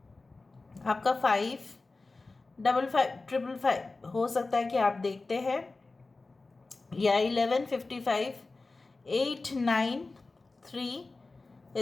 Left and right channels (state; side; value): quieter; right; 3.5 dB